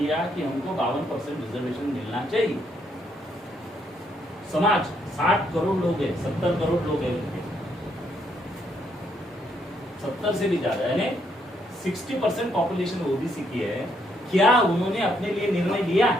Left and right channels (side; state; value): both; normal; correlation 0.73